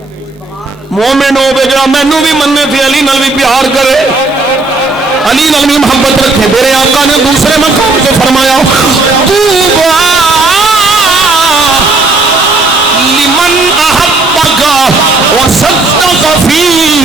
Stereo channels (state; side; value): quieter; left; 3.3 dB